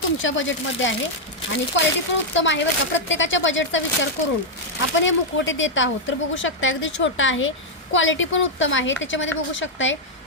तुमच्या बजेटमध्ये आहे आणि क्वालिटी पण उत्तम आहे बघा. प्रत्येकाच्या बजेटचा विचार करून आपण हे मुखवटे देत आहोत. तर बघू शकता अगदी छोटा आहे, क्वालिटी पण उत्तम आहे. त्याच्यामध्ये बघू शकताय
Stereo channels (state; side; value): normal; both; correlation -0.03